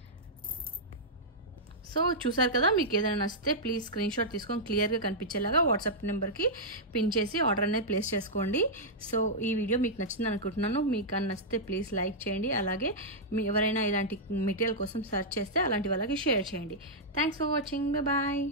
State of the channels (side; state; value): both; normal; correlation -0.09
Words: So చూసారు కదా, మీకు ఏదైనా నచ్చితే ప్లీజ్ స్క్రీన్ షాట్ తీసుకొని క్లియర్గా కనిపించేలాగా వాట్సాప్ నెంబర్కి పిన్ చేసి ఆర్డర్ అనేది ప్లేస్ చేసుకోండి. సో ఈ వీడియో మీకు నచ్చింది అనుకుంటున్నాను. మీకు నచ్చితే ప్లీజ్ లైక్ చేయండి. అలాగే మీ ఎవరైనా ఇలాంటి మెటీరియల్ కోసం సెర్చ్ చేస్తే అలాంటి వాళ్ళకి షేర్ చేయండి. Thanks for watching. బాయ్.